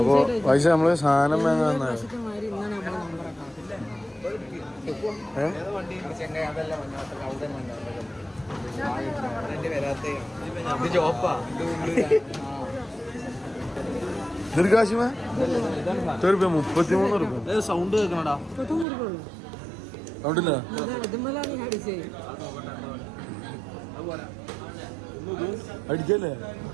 പൈസ നമ്മള് സാധനം വാങ്ങാൻ ദീർഘാശിമ 33 രൂപ സൗണ്ട് കേൾക്കണടാ സൗണ്ടില്ല അടിക്കല്ലേ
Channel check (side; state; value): left; drops out; at 18.9 s